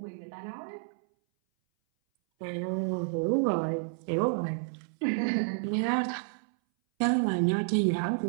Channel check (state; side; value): silent; left; 58 dB below the other